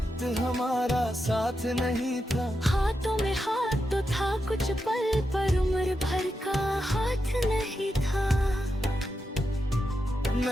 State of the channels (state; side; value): normal; both; correlation 0.87